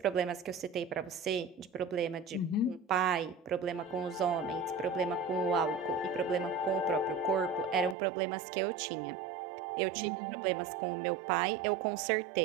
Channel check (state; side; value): drops out; left; at 8.0 s